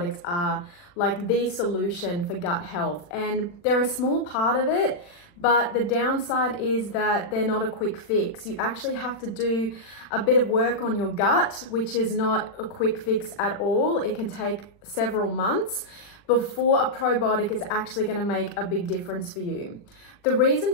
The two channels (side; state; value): right; late; 40 ms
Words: are like the solution for gut health, and they're a small part of it, but the downside is that they're not a quick fix. You actually have to do a bit of work on your gut, which is not a quick fix at all. It can take several months before a probiotic is actually going to make a big difference for you. The